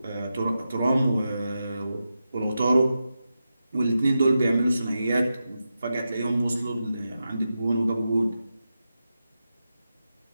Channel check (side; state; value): both; inverted; correlation -0.90